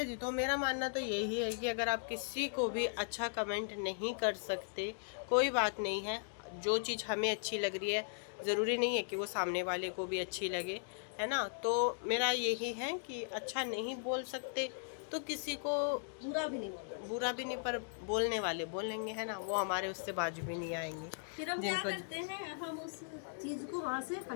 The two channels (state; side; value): silent; right; digital silence